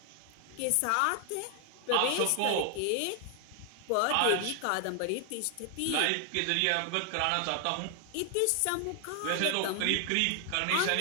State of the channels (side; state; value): both; different; correlation 0.00